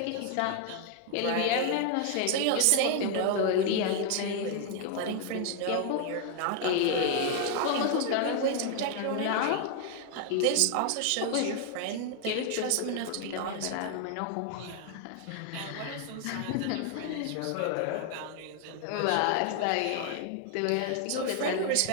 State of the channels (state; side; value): different; both; correlation 0.00